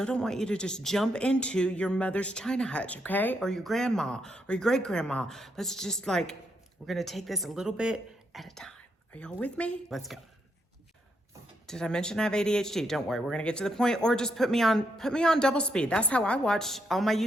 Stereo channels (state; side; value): normal; both; correlation 0.78